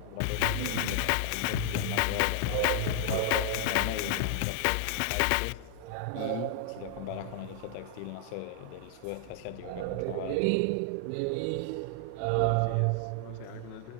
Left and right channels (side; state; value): both; different; correlation 0.00